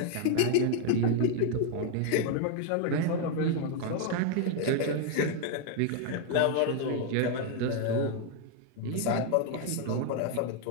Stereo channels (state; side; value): different; both; correlation 0.00